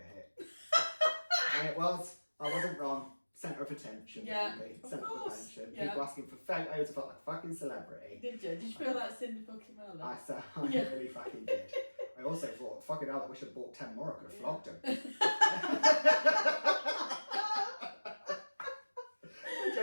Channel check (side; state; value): both; inverted; correlation -1.00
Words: hit. And it was. I wasn't wrong. Centre of attention. Really. Centre of attention. People asking for photos. I felt like a fucking celebrity. Did you? Did you feel like Cindy fucking Merlin? I said, I really fucking did. I also thought, fucking hell, I wish I'd bought 10 more. I could have flogged him. I